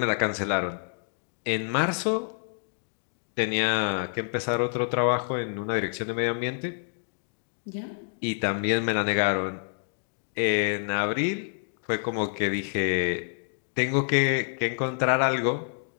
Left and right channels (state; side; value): silent; right; digital silence